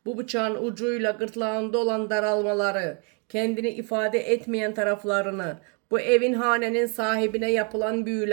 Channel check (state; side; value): quieter; left; 36.8 dB